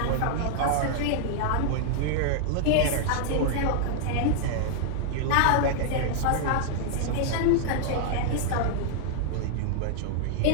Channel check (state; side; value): different; both; correlation -0.01